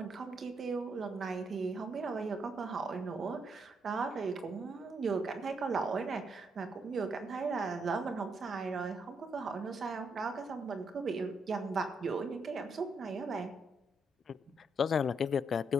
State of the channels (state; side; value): normal; both; correlation 0.77